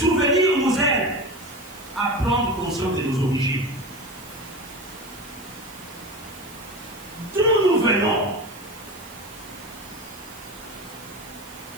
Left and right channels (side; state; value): right; noise; hiss, 20 dB below the sound